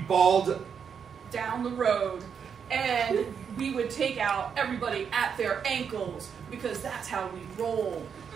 balled Down the road, and we would take out everybody at their ankles because that's how we roll.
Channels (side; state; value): left; quieter; 7.0 dB